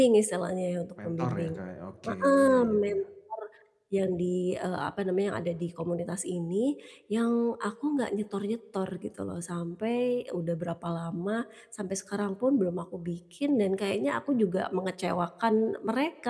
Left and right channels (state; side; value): identical; both; correlation 1.00